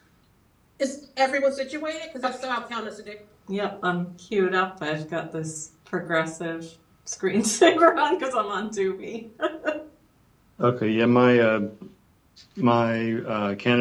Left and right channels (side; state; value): both; identical; correlation 1.00